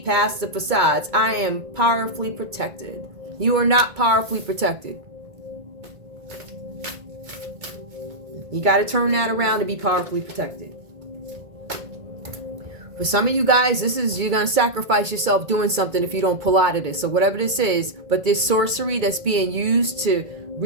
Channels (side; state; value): left; late; 2.2 ms